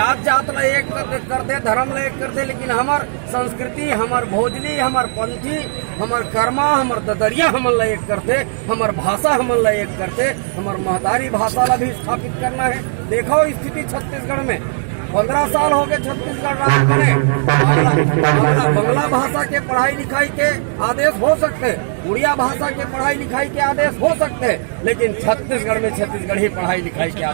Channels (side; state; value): left; silent; digital silence